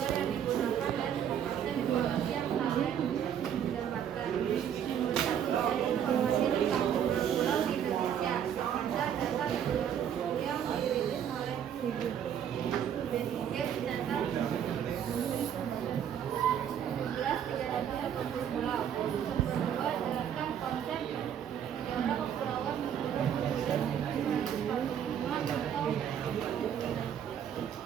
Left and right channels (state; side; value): quieter; left; 9.1 dB